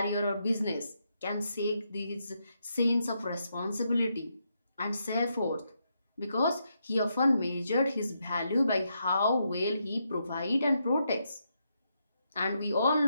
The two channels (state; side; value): inverted; both; correlation -0.81